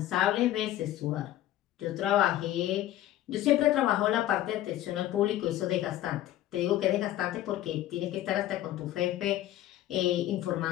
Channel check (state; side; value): quieter; right; 13.5 dB